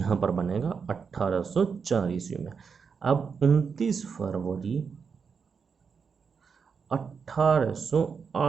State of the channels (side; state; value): left; quieter; 5.9 dB